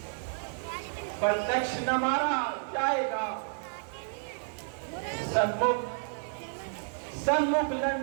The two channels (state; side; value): silent; left; 56 dB below the other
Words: प्रत्यक्ष न मारा जाएगा, सन्मुख